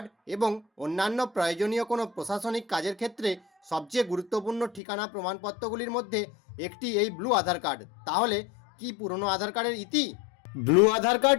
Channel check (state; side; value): drops out; right; at 4.8 s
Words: এবং অন্যান্য প্রয়োজনীয় কোনো প্রশাসনিক কাজের ক্ষেত্রে সবচেয়ে গুরুত্বপূর্ণ ঠিকানা প্রমাণপত্রগুলির মধ্যে একটি এই ব্লু আধার কার্ড। তাহলে কি পুরনো আধার কার্ডের ইতি? ব্লু আধার